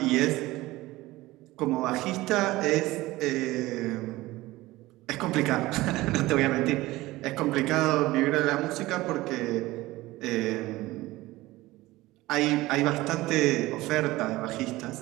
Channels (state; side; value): quieter; left; 18.6 dB